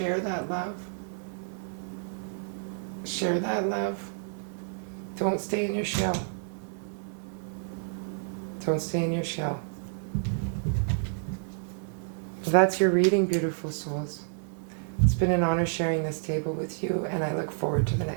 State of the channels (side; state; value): left; silent; digital silence